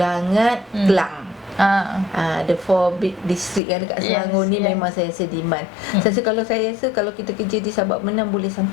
Kelang. The 4 big district yang dekat Selangor ni memang saya rasa demand. Saya rasa kalau kita kerja di Sabak Menang boleh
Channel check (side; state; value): right; drops out; at 3.6 s